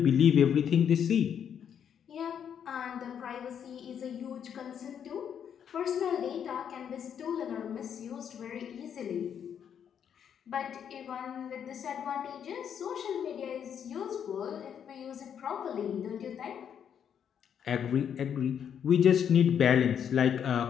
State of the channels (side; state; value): right; quieter; 8.4 dB